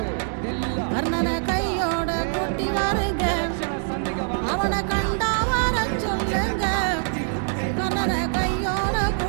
கர்ணனை கையோட கூட்டி வாருங்க, அவனை கண்டா வர சொல்லுங்க, கர்ணனை கையோட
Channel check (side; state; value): left; silent; 58 dB below the other